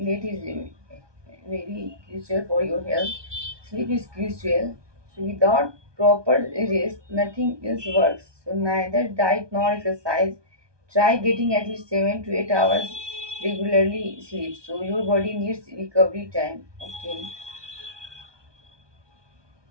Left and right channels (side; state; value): left; late; 1.2 ms